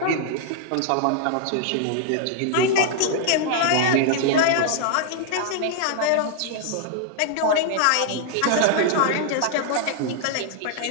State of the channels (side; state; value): both; different; correlation -0.01